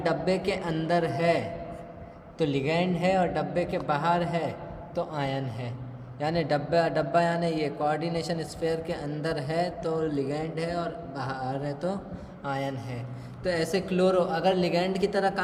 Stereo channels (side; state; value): both; identical; correlation 1.00